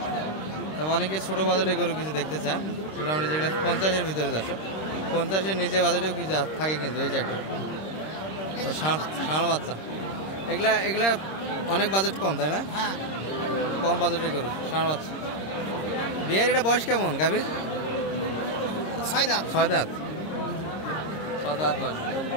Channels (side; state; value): right; late; 26 ms